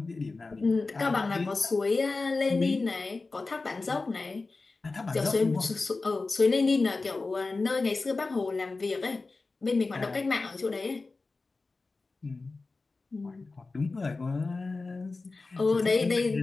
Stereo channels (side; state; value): right; quieter; 3.7 dB